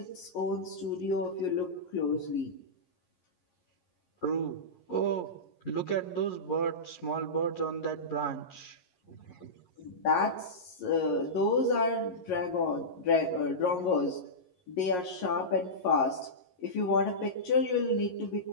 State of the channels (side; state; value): right; late; 11 ms